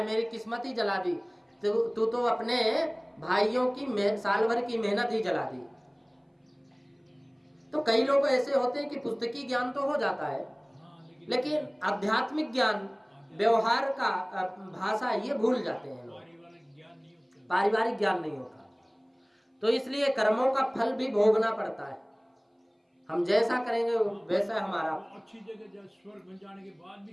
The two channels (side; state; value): both; identical; correlation 1.00